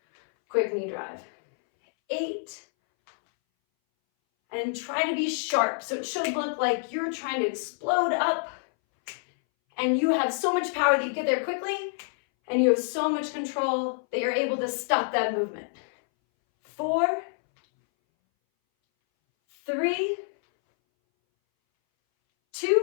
quick knee drive. 8. And try to be sharp. So it should look like you're trying to explode up and you have so much power that you get there quickly and you have so much control that you're able to stop that movement. 4, 3,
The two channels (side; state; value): right; silent; 60 dB below the other